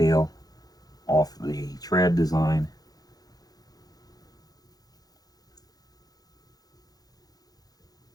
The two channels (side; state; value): right; late; 0.19 ms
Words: off the tread design.